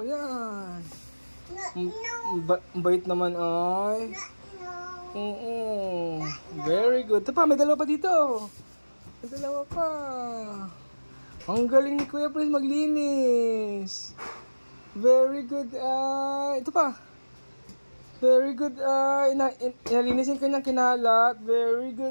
Yan. Bait naman ay. Oo. Very good. Ito pa, may dalawa pa dito. Ang galing ni Kuya Prince maglinis. Very good. Ito pa. Very good. Inalinisin ko niyang kinalat. Very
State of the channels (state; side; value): inverted; both; correlation -1.00